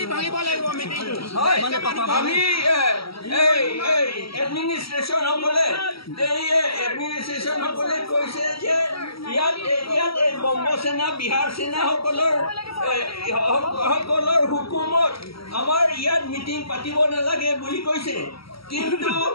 ভাঙিব লাগিব মিটিংটো আমি এডমিনিষ্ট্ৰেশ্যন সকলে কৈছে যে ইয়াত বংগ সেনা বিহাৰ সেনা সকলৰ হুকুমত আমাৰ ইয়াত মিটিং পাতিব নালাগে বুলি কৈছে কিন্তু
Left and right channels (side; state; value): right; late; 0.75 ms